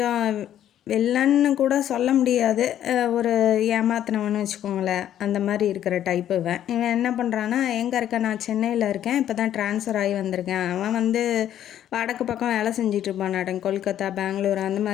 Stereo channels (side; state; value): right; quieter; 11.1 dB